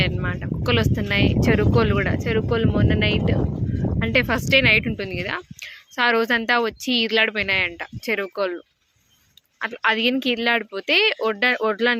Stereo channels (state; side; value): identical; both; correlation 1.00